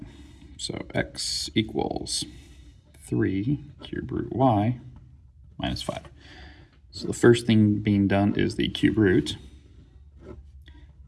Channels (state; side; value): identical; both; correlation 1.00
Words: So x equals 3 cube root y minus 5. So the first thing being done is the cube root,